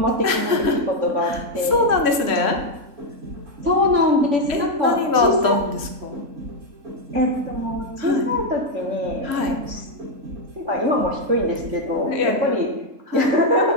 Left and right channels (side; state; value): left; late; 3.7 ms